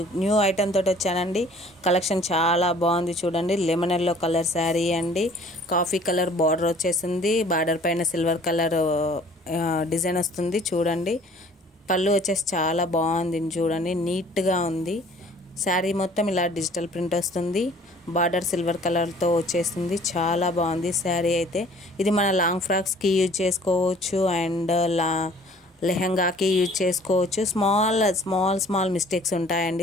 new item తోటి వచ్చానండి. కలెక్షన్ చాలా బాగుంది చూడండి. లెమన్ ఎల్లో కలర్ శారీ అండి. కాఫీ కలర్ బార్డర్ వచ్చేసింది. బార్డర్ పైన సిల్వర్ కలర్ డిజైన్ వస్తుంది చూడండి. పళ్ళు వచ్చేసి చాలా బాగుంది చూడండి, నీట్గా ఉంది. శారీ మొత్తం ఇలా డిజిటల్ ప్రింట్ వస్తుంది. బార్డర్ సిల్వర్ కలర్తో వచ్చేస్తుంది. చాలా బాగుంది శారీ అయితే. ఇది మన లాంగ్ ఫ్రాక్స్కి యూజ్ చేసుకోవచ్చు అండ్ లెహంగాకి యూజ్ చేసుకోవచ్చు. స్మాల్ మిస్టేక్స్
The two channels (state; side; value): normal; both; correlation 0.53